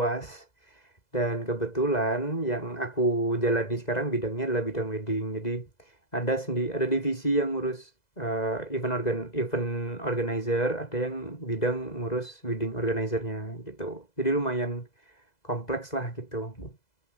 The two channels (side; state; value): right; late; 2.0 ms